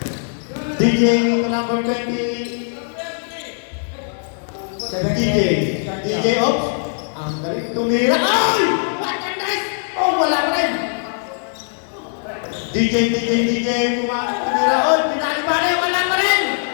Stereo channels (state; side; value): silent; right; digital silence